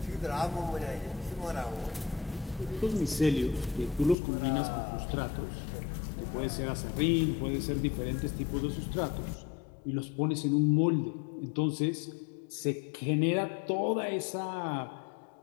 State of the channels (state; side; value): drops out; right; at 4.2 s